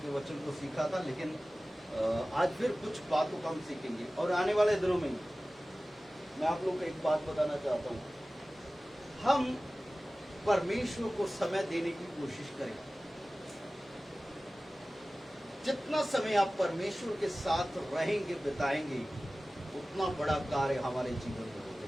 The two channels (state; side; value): normal; both; correlation 0.97